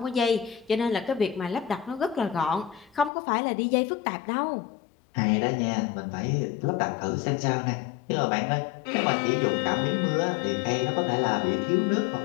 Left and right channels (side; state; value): right; drops out; at 3.1 s